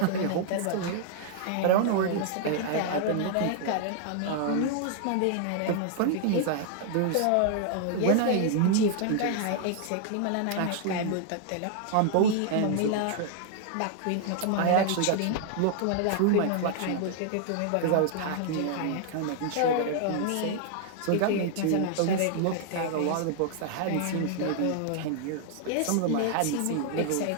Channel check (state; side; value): different; both; correlation 0.00